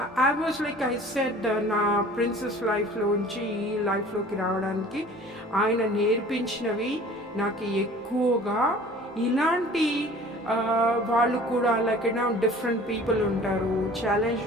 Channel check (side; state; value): both; normal; correlation 0.47